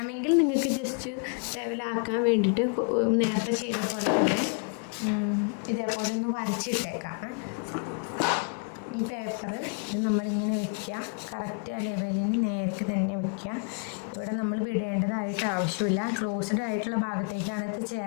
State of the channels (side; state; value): right; quieter; 38.6 dB